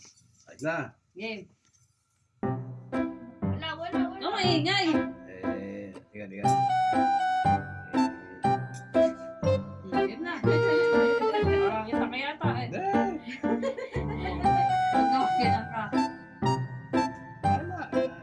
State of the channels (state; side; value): identical; both; correlation 1.00